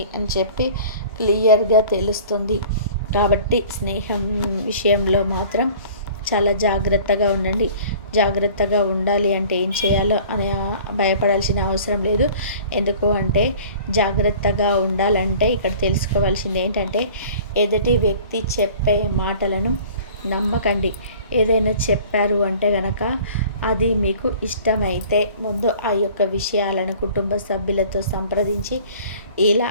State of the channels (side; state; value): both; inverted; correlation -0.47